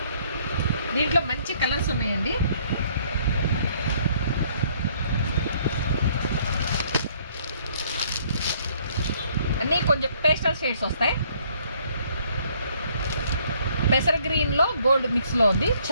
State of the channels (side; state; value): both; inverted; correlation -0.63